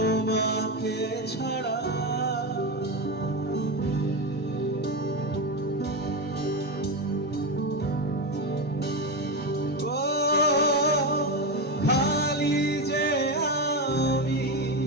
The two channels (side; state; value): both; normal; correlation 0.14